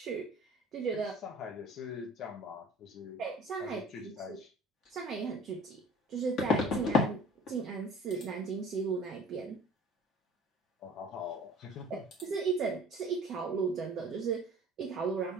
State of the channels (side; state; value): both; normal; correlation 0.46